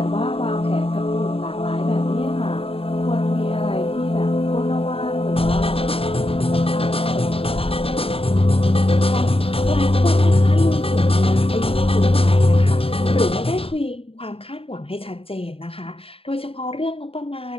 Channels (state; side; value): late; right; 0.27 ms